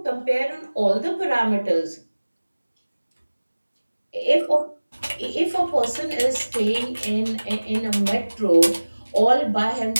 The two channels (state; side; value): inverted; both; correlation -1.00